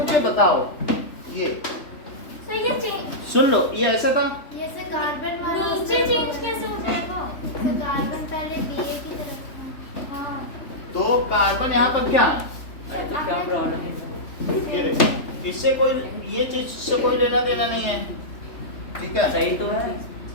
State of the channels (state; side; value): late; right; 3.4 ms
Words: बताओ, ये सर ये चेंज, सुन लो, ये ऐसा था, ये से कार्बन वाला नीचे चेंज कैसे हो जाएगा? सर कार्बन पहले DA की तरफ था। हाँ तो कार्बन यहाँ पर क्या है? अरे तो क्या प्रॉब्लम है? ये देखो, इससे कोई, ये चीज से कोई लेना देना नहीं है, ठीक है? सही तो है।